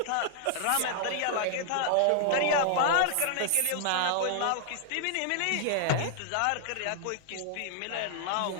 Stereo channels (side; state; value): both; different; correlation -0.01